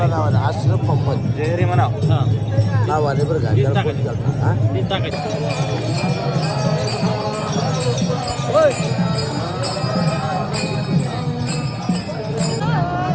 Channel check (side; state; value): both; identical; correlation 1.00